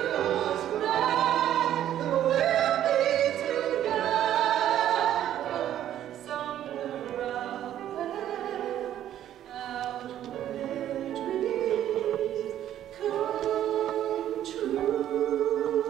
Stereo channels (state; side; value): quieter; left; 11.5 dB